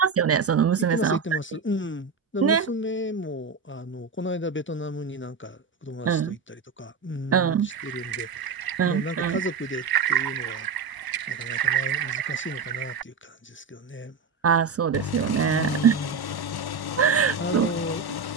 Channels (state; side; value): quieter; left; 5.1 dB